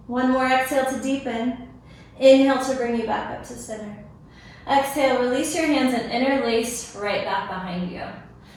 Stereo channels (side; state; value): both; identical; correlation 1.00